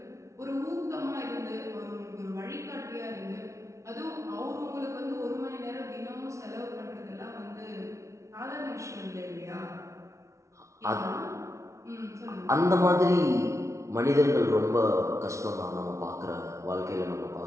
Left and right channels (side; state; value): left; late; 0.14 ms